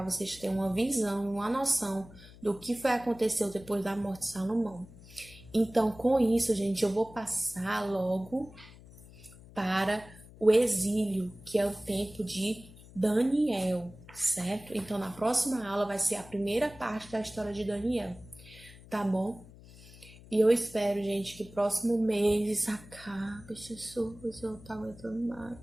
vocês terem uma visão, uma noção do que foi aconteceu depois da morte de Salomão. Então, com isso, gente, eu vou passar logo para o exílio, que é o tempo de Daniel, certo? Então, na próxima aula vai ser a primeira parte da história de Daniel, tá bom? E eu espero, gente, que próximo mês isso acabe, Jesus, eu não tô aguentando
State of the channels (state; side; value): noise; left; hum, 20 dB below the sound